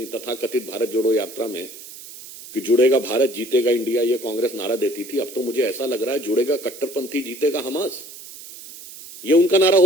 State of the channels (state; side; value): noise; right; hiss, 15 dB below the sound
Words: तथाकथित भारत जोड़ो यात्रा में, कि जुड़ेगा भारत जीतेगा इंडिया, ये कांग्रेस नारा देती थी। अब तो मुझे ऐसा लग रहा है जुड़ेगा कट्टरपंथी जीतेगा हमास, ये उनका नारा